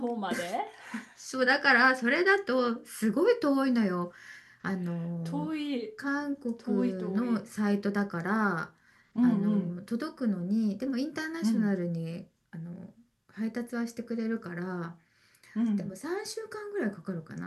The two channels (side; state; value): both; identical; correlation 1.00